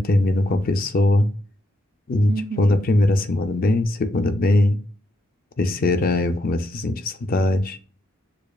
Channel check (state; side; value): normal; both; correlation 0.78